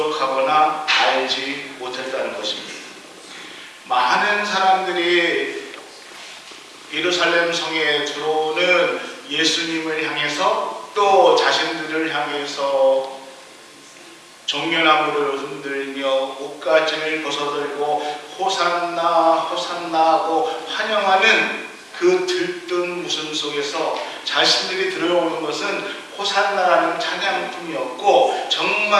알지 못했다는 것입니다. 많은 사람들이 예루살렘 성에 들어오는 예수님을 향해서 또 자신들을 향해서 종려나무를 흔들며 옷가짐을 벗어들고 호산나 호산나 하고 환영하는 그 들뜬 웃음 속에서 자신들이 들어오는 것은 호산나라는 찬양품이었고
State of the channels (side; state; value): both; identical; correlation 1.00